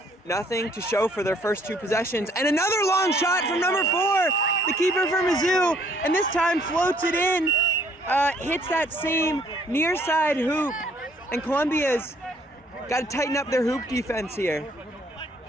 nothing to show for their first 2 possessions. And another long shot from number 4, the keeper for Mizzou, and this time floats it in, hits that same near side hoop, and Columbia's got to tighten up their hoop defense here.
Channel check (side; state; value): both; normal; correlation 0.63